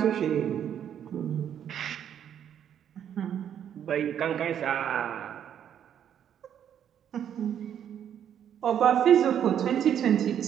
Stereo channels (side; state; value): left; quieter; 9.4 dB